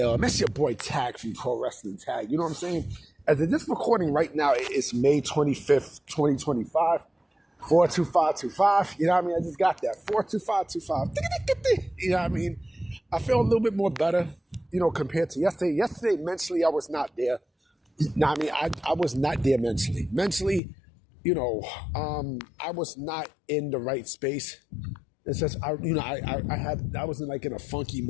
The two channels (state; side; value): drops out; right; at 20.6 s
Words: That's your boy Tag from Pro Wrestling Tag. You know what I'm saying? As of this recording right now, it's May 25th, 2025. 42525. You know what I mean? I just got that. 42525. You know what I mean? I feel a little bit more better, compared to yesterday. Yesterday, mentally, I was not there. No, I mean, I was not there mentally. Mentally, I was not in the right space. It's just, I was in a funky